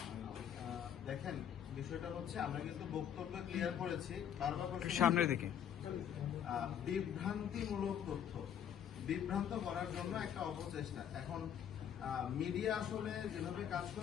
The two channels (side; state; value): right; quieter; 9.1 dB